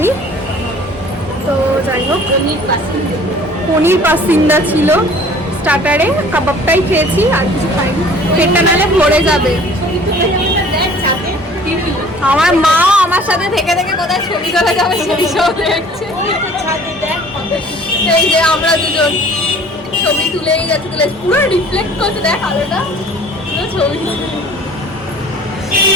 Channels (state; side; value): normal; both; correlation 0.50